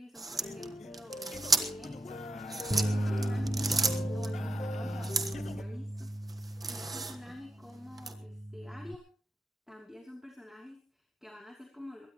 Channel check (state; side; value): normal; both; correlation 0.83